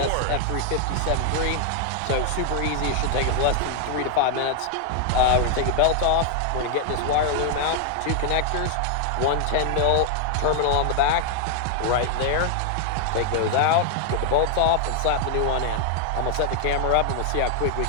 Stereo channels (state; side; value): different; both; correlation 0.00